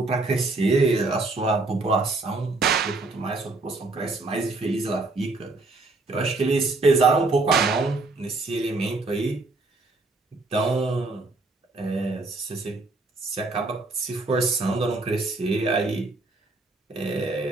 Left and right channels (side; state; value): left; quieter; 3.3 dB